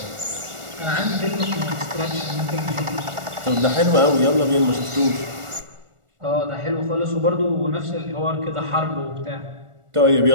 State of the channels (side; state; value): left; late; 1.4 ms